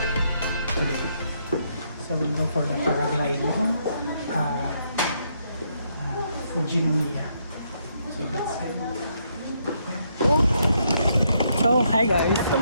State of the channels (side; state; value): both; inverted; correlation -0.75